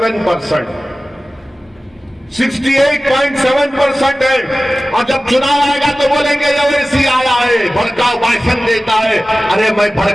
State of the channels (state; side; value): normal; both; correlation 0.96